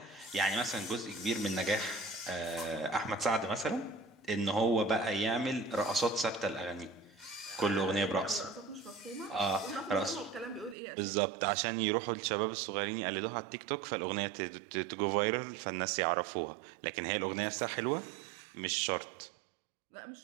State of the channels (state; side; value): drops out; left; at 10.8 s